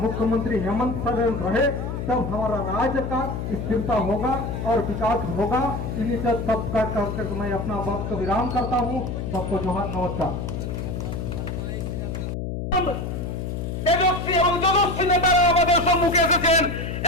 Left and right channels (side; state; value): left; noise; hum, 4 dB below the sound